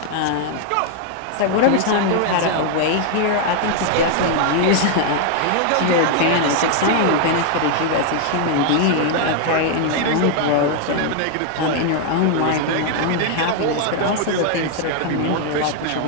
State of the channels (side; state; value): both; different; correlation 0.00